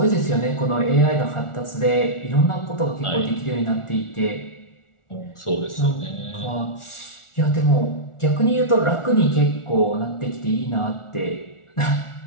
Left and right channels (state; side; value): late; right; 1.4 ms